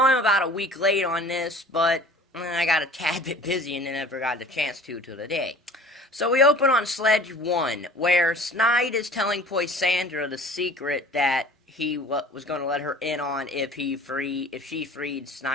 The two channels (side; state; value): both; normal; correlation 0.45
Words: I'm about a week late on this, but I got a tad bit busy and never got the chance to till today. So we open on Sledge 1, where Snide is telling Poisandra the secret that he was going to let her in on if she freed